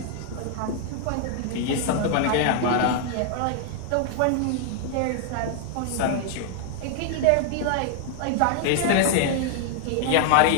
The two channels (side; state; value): both; different; correlation 0.00